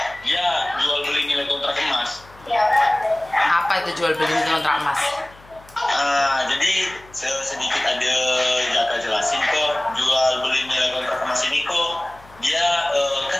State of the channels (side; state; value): left; noise; hum, 25 dB below the sound